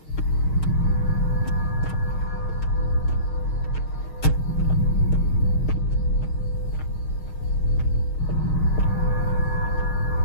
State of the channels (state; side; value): late; right; 6.4 ms